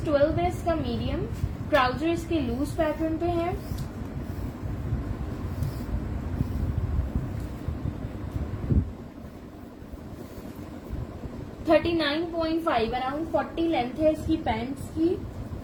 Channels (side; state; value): both; identical; correlation 1.00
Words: 12 है इसका, मीडियम। ट्राउजर इसके लूज पैटर्न पे है। $39.5 अराउंड 40 लेंथ है इसकी पैंट्स की।